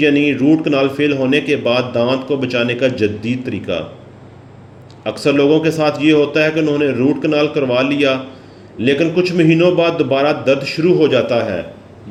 यानी रूट कनाल फेल होने के बाद दांत को बचाने का जदीद तरीका। अक्सर लोगों के साथ ये होता है कि उन्होंने रूट कनाल करवा लिया, लेकिन कुछ महीनों बाद दोबारा दर्द शुरू हो जाता है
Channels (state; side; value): identical; both; correlation 1.00